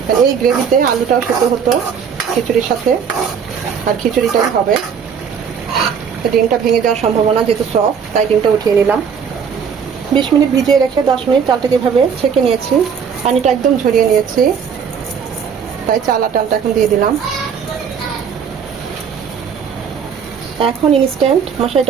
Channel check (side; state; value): left; quieter; 6.9 dB